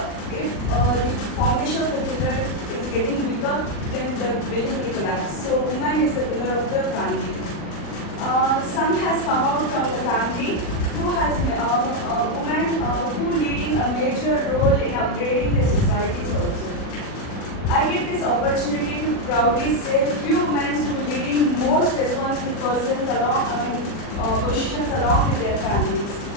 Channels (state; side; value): late; right; 40 ms